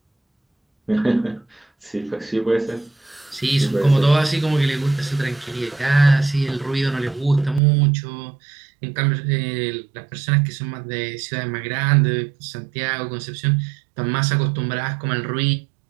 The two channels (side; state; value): left; drops out; at 7.6 s